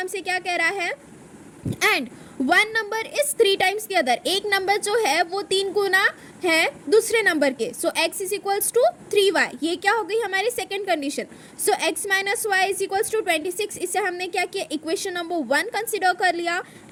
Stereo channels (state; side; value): identical; both; correlation 1.00